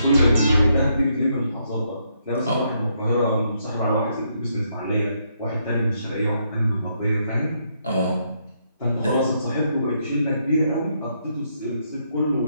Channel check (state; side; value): inverted; both; correlation -0.76